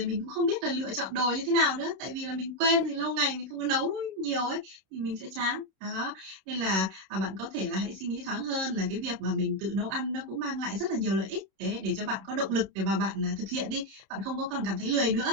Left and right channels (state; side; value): late; left; 32 ms